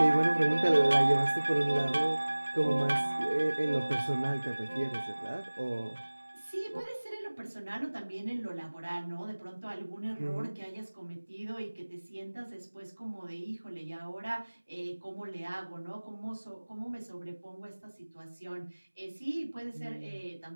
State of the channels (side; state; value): both; inverted; correlation -1.00